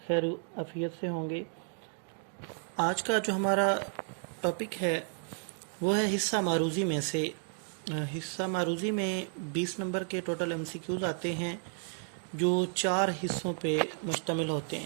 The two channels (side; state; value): left; silent; 56 dB below the other